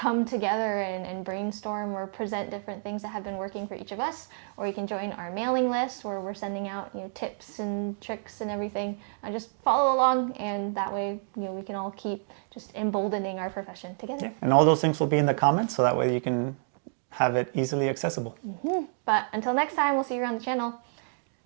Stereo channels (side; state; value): left; silent; digital silence